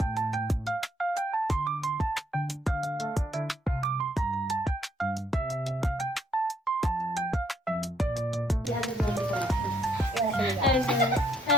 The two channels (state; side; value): normal; both; correlation 0.70